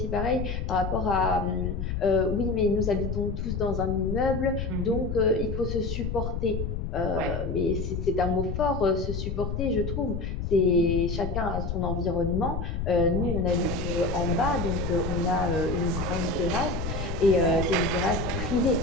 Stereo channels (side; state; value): left; noise; rumble, 3 dB below the sound